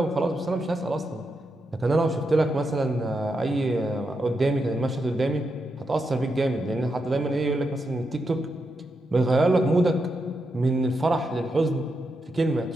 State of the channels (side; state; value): both; normal; correlation 0.85